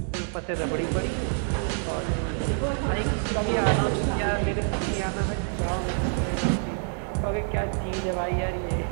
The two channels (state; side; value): silent; left; 58 dB below the other